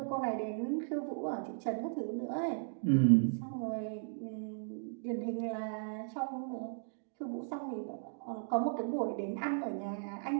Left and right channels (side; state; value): left; silent; digital silence